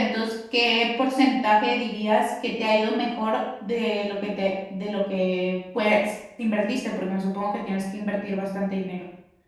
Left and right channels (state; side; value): identical; both; correlation 1.00